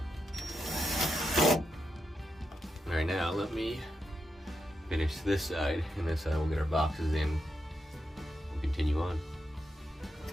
Alright, now let me finish this side, and this side we'll get our boxes in and continue on.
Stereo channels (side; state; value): both; normal; correlation 0.85